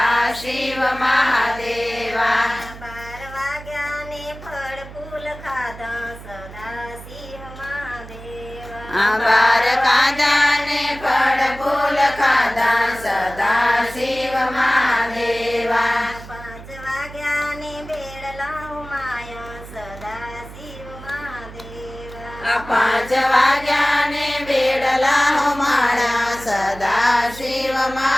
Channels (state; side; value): noise; right; hum, 15 dB below the sound